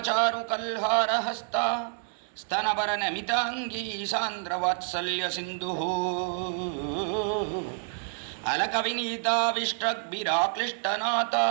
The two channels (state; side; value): silent; left; 59 dB below the other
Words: కల్హారహస్త స్తనభరనమితాంగీ సాంద్రవాత్సల్య సింధు అలకవినీతావిష్ట్రగ్భిరాక్లిష్టనాథ